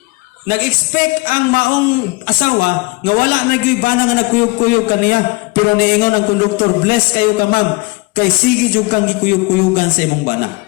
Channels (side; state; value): right; quieter; 25.2 dB